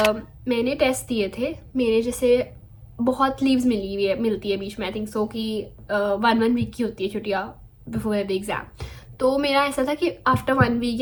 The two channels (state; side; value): identical; both; correlation 1.00